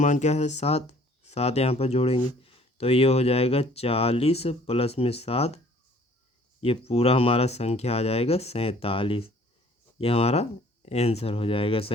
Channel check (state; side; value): normal; both; correlation 0.55